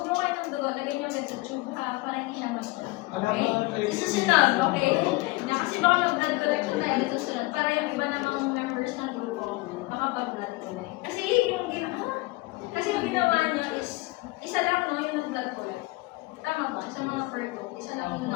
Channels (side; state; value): right; quieter; 22.1 dB